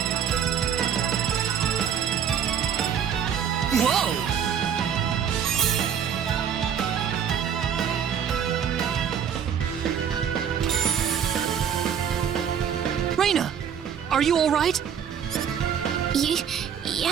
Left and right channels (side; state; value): left; quieter; 8.1 dB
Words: Whoa! Rena, are you all right?